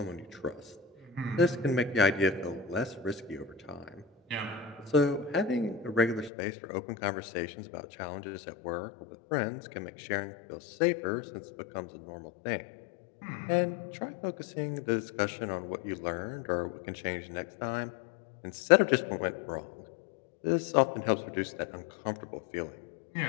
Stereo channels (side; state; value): right; drops out; at 6.3 s